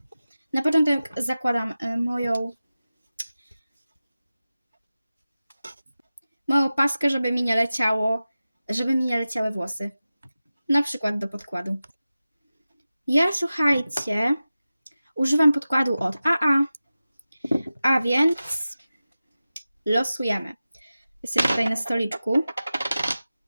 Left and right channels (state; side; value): inverted; both; correlation -0.95